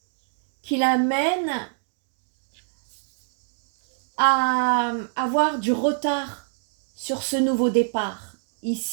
qui l'amène à avoir du retard sur ce nouveau départ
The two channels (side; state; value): left; silent; digital silence